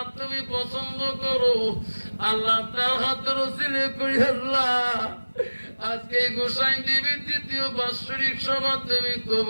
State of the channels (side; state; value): both; inverted; correlation -1.00